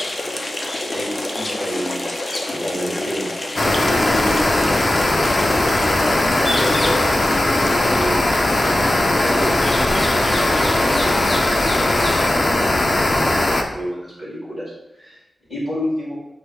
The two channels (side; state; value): both; normal; correlation 0.94